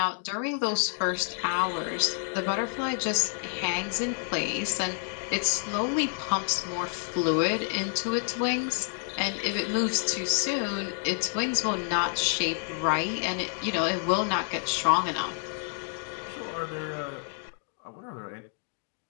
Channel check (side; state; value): right; silent; 59 dB below the other